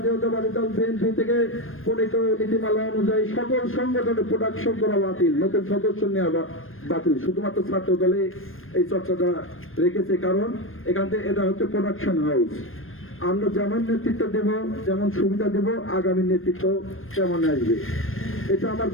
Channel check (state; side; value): late; right; 0.60 ms